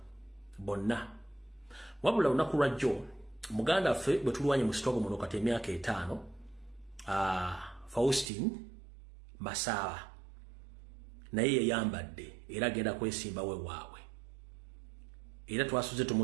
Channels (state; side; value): drops out; left; at 8.3 s